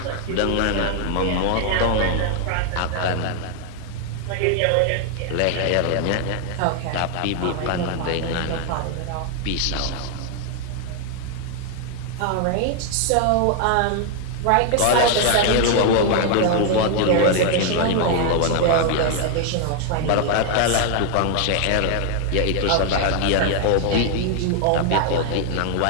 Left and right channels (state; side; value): different; both; correlation 0.00